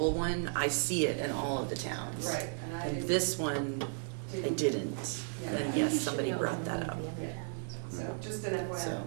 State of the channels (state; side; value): silent; left; digital silence